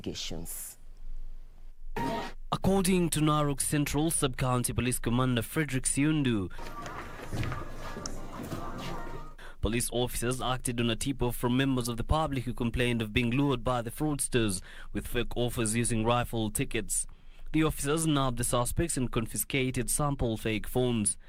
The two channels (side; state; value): both; identical; correlation 1.00